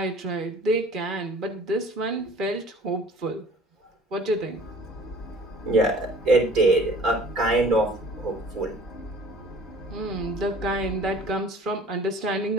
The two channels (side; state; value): both; normal; correlation 0.48